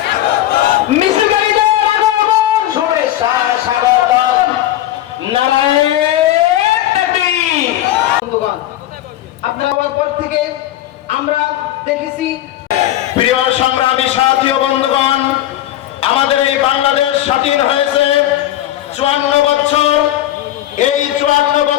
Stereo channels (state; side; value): quieter; right; 13.5 dB